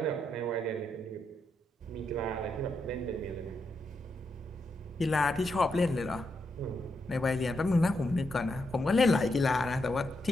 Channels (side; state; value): both; normal; correlation 0.82